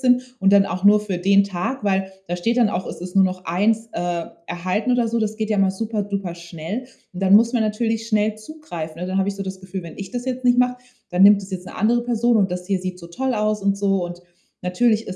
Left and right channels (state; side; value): identical; both; correlation 1.00